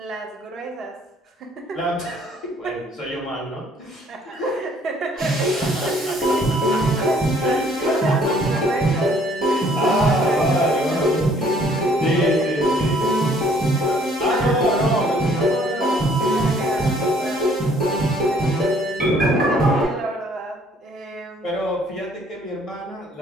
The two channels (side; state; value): both; normal; correlation 0.60